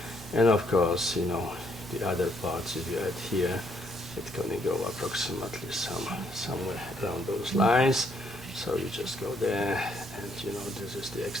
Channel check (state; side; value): normal; both; correlation 0.70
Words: And of course, you know, the other parts, if you add here, it's going to go approximately somewhere around those lines. So you just go there, and you know, this is the